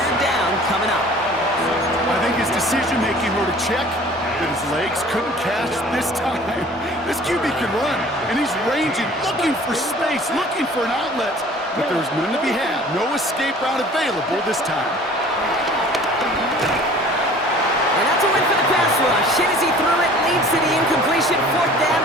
down coming up. I think his decision-making were to check that his legs couldn't catch this time. This QB can run, and he's ranging, looking for space, looking for an outlet. But there's none to be had. No escape route available this time. And that's a win for the pass rush. Hit as he threw it, leads to the incompletion. Fourth down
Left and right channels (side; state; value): both; normal; correlation 0.48